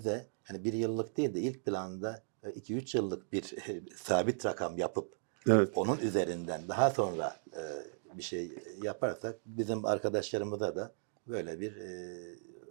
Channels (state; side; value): silent; left; digital silence